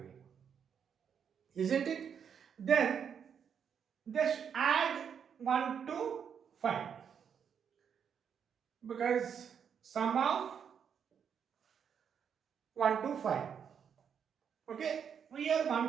isn't it? Then just add 1 to 5, because sum of 1 to 5. Okay, here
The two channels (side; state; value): left; quieter; 7.5 dB